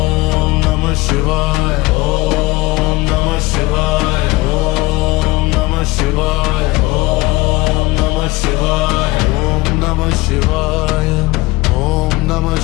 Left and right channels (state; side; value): quieter; right; 21.2 dB